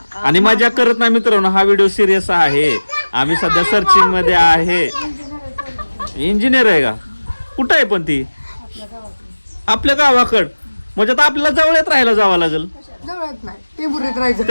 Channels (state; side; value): inverted; both; correlation -1.00